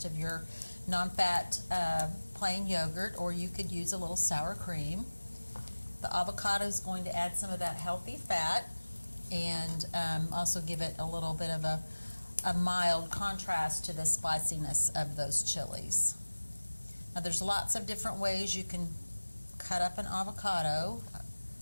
of your non-fat plain yogurt, or you could use a little sour cream. The avocado is going to add some of that healthy fat and also give it a little bit of a mild contrast to the spiciness of those chilies. Now there's lots of different ways you can cut up an avocado.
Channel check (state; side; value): inverted; both; correlation -1.00